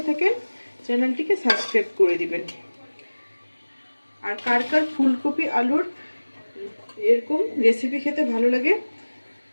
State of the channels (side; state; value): both; inverted; correlation -1.00